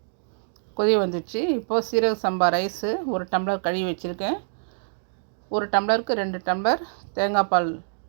கொதி வந்துடுச்சு. இப்போது சீரக சம்பா ரைஸு 1 டம்ளர் கழுவி வச்சுருக்கேன். 1 டம்ளருக்கு 2 டம்ளர் தேங்காய் பால்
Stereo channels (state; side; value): silent; left; digital silence